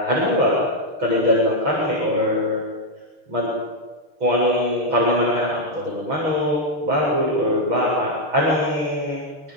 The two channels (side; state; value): left; late; 6.5 ms